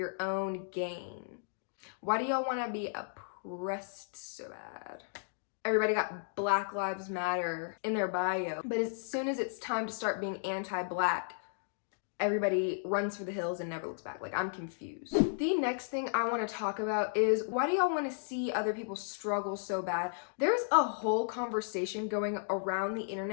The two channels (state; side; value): silent; right; digital silence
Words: own gain. Why do y'all want to be oppressed so bad? Everybody got Black Lives Matter in their bio, but as soon as it's time to start being anti-Black, everybody runs for the hills and never looks back. Like, I'm confused. The next thing I want to talk about is, why do y'all want to see other people struggle so bad? There's a whole conversation going around the